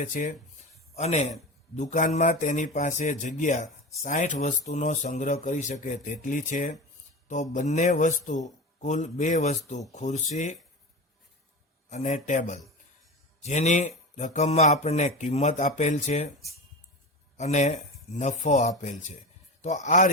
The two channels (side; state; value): both; normal; correlation 0.26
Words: છે અને દુકાનમાં તેની પાસે જગ્યા 60 વસ્તુનો સંગ્રહ કરી શકે તેટલી છે. તો બંને વસ્તુ કુલ 2 વસ્તુ ખુરશી અને ટેબલ જેની રકમમાં આપણને કિંમત આપેલ છે અને નફો આપેલ છે. તો આ